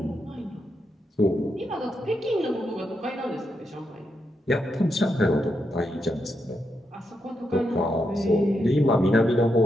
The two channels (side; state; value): both; normal; correlation 0.83